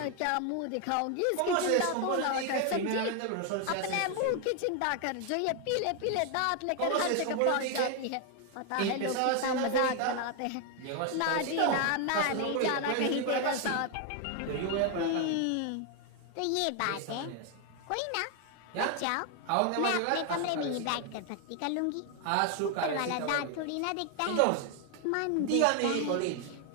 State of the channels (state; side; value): different; both; correlation 0.01